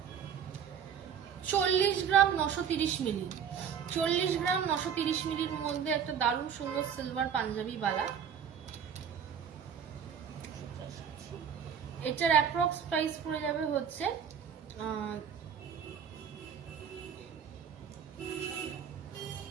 40 গ্রাম 930 মিলি। 40 গ্রাম 930 মিলির মধ্যে একটা দারুণ সুন্দর সিলভার পাঞ্জাবি বালা। এটার অ্যাপ্রক্স প্রাইস পড়ে যাবে হচ্ছে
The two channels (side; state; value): left; quieter; 7.8 dB